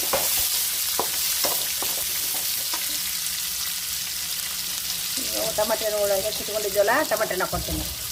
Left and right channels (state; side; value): identical; both; correlation 1.00